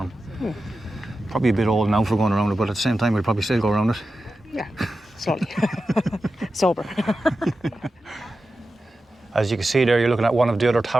Probably a bit old now for going around it, but at the same time we'll probably still go around it. Yeah, slowly. Sober. As you can see there, you're looking at one of the other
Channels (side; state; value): both; normal; correlation 0.92